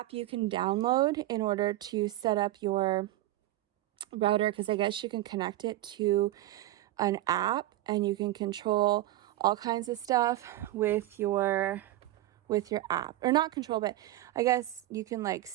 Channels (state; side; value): quieter; left; 15.7 dB